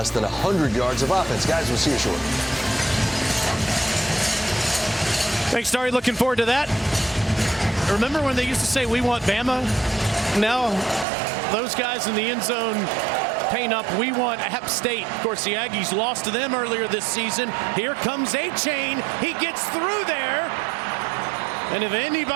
than 100 yards of offense. Guys, we'll see you shortly. Thanks, Starry. Looking forward to that. Remember when they used to say, we want Bama? Now, those guys in the end zone paint up, we want App State. Of course, the Aggies lost to them earlier this season. Here comes A-Chain. He gets through there. And if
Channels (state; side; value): drops out; left; at 11.1 s